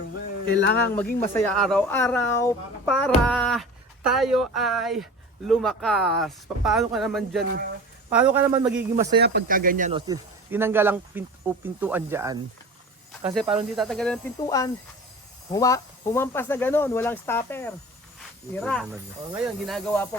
Bel. Kailangan maging masaya araw-araw para tayo ay lumakas. Paano ka naman dyan? Paano ka naman magiging masaya pagka ganyan? No? Tinanggal ang pintuan dyan. Kasi parang hindi tatanggalin ang pintuan. Humampas na gano'n, walang stopper. Tira. O ngayon, ginagawa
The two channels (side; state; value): both; normal; correlation 0.36